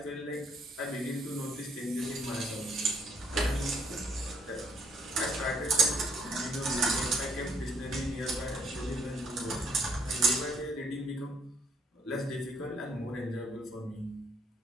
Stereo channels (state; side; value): normal; both; correlation 0.68